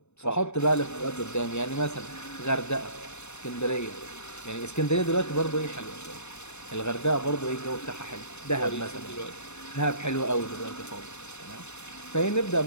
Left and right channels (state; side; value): late; right; 0.82 ms